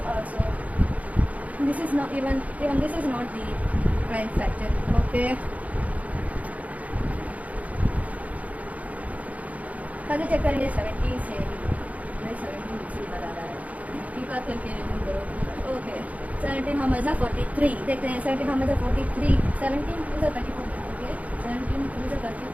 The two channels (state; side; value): late; left; 0.070 ms